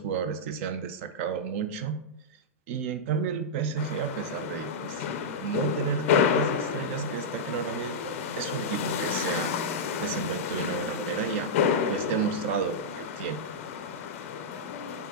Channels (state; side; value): normal; both; correlation -0.09